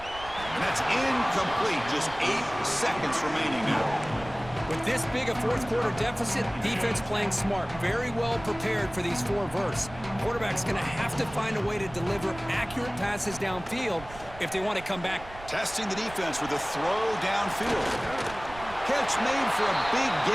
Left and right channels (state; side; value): noise; right; rumble, 16 dB below the sound